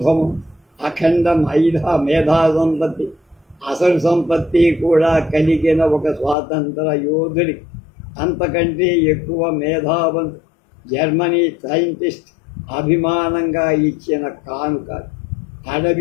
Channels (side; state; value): right; drops out; at 6.4 s